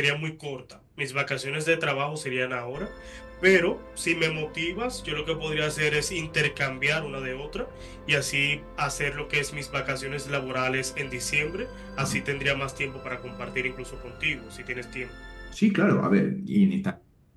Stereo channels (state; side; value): identical; both; correlation 1.00